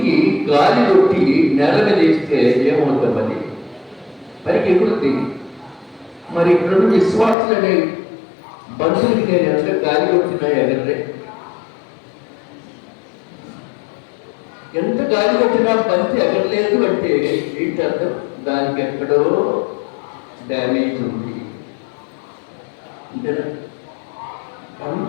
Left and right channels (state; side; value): drops out; right; at 7.4 s